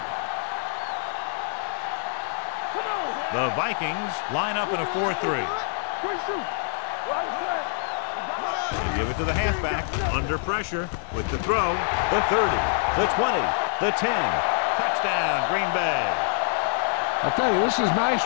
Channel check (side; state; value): right; silent; 61 dB below the other